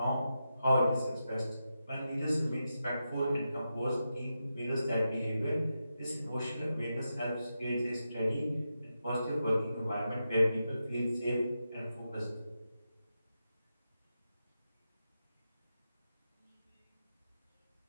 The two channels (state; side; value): inverted; both; correlation -0.88